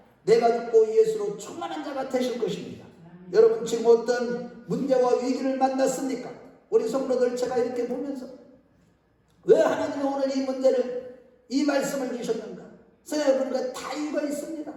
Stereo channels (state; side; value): identical; both; correlation 1.00